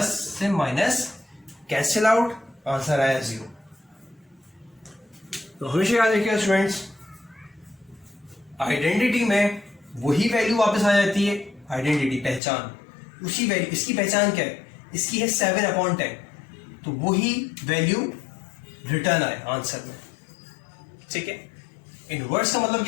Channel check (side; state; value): right; drops out; at 12.4 s